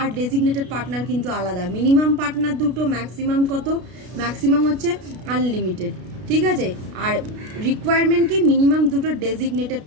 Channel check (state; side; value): late; left; 33 ms